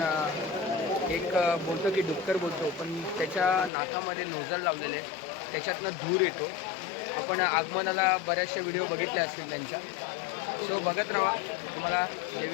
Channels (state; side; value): drops out; right; at 3.7 s